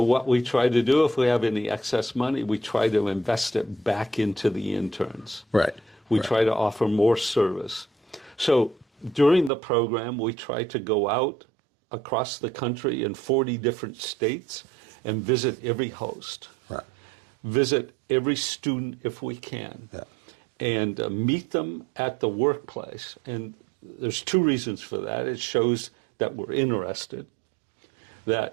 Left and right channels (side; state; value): left; drops out; at 9.5 s